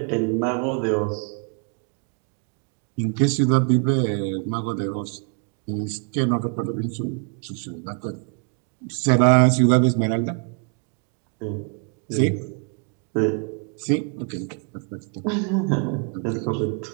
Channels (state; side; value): quieter; left; 38.8 dB